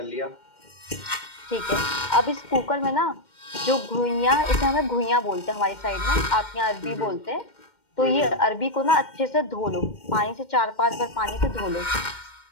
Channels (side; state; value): right; late; 2.1 ms